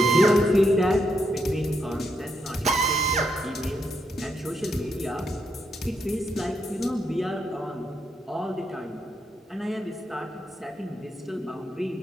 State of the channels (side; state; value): both; normal; correlation 0.79